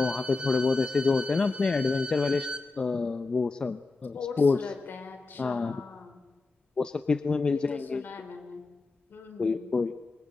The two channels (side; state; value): right; quieter; 3.7 dB